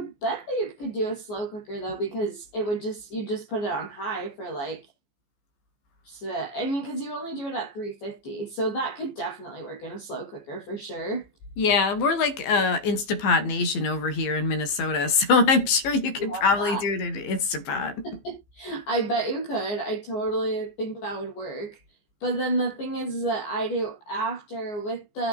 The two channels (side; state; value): right; late; 15 ms